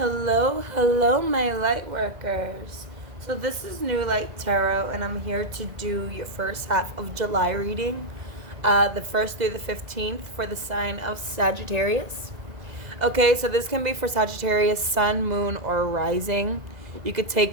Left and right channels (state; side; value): late; left; 2.0 ms